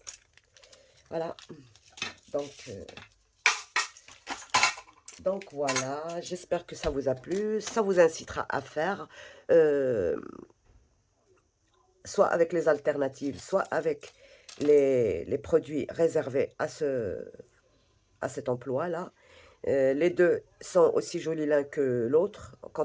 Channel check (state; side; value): identical; both; correlation 1.00